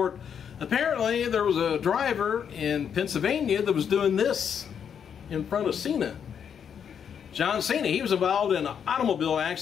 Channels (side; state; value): right; quieter; 7.8 dB